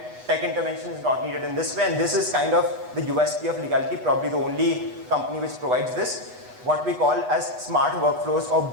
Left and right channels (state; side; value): late; left; 8.1 ms